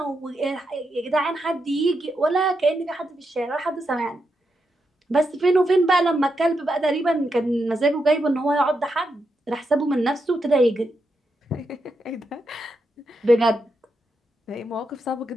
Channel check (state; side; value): normal; both; correlation 0.84